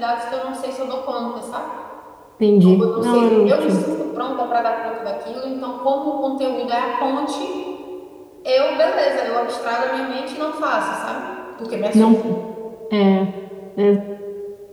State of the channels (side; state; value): both; identical; correlation 1.00